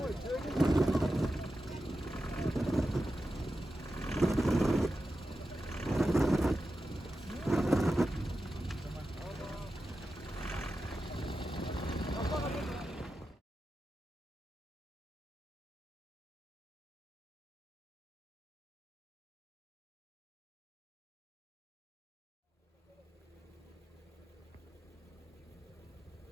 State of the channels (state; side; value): normal; both; correlation 0.91